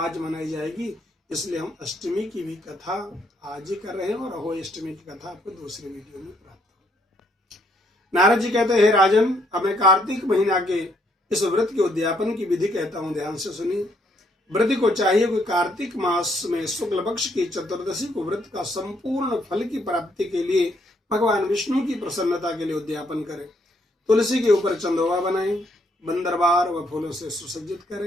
मनाई जाएगी। इसलिए हम अष्टमी की भी कथा आज ही कर रहे हैं और अहोई अष्टमी की कथा आपको दूसरे वीडियो में प्राप्त हो। नारद जी कहते हैं, हे राजन, अब मैं कार्तिक महीना के इस व्रत के उद्यापन की विधि कहता हूं, ध्यान से सुनिए। व्रत को चाहिए कोई कार्तिक मास में शुक्ल पक्ष की चतुर्दशी को व्रत का संपूर्ण फल की प्राप्ति के लिए भगवान विष्णु की प्रसन्नता के लिए उद्यापन करें। तुलसी के ऊपर चंदोवा बनाएं, बंदरबार व फूलों से सुसज्जित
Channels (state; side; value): normal; both; correlation 0.71